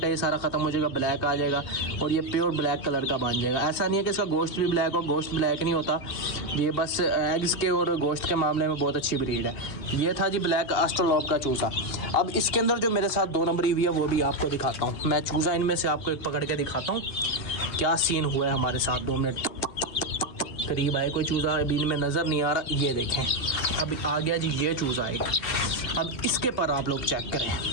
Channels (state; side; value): late; right; 2.8 ms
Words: है ये सारा ख़त्म हो जाएगा, ब्लैक आ जाएगा और ये प्योर ब्लैक कलर का बन जाएगा। ऐसा नहीं है कि इसका गोश्त भी ब्लैक हो, गोश्त ब्लैक नहीं होता, ये बस एग्स के और गोश्त के मामले में बहुत अच्छी ब्रीड है। ये था जी ब्लैक ऑस्ट्रेलोप का चूज़ा। अब इसके अंदर जो मेरे साथ 2 नंबरी हुई है वो भी आपको दिखाता हूँ। मैं चूज़ा इनमें से आपको एक पकड़ के दिखाता हूँ क्या सीन हुआ है हमारे साथ। 2 मिनट करीब आए, कोई चूज़ा अभी इनमें नज़र नहीं आ रहा। ये देखें अब आ गया जी ये चूज़ा एक। अब इसके पर आप लोग चेक करें,